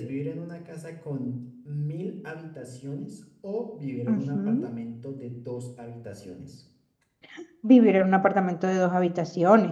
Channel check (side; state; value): both; identical; correlation 1.00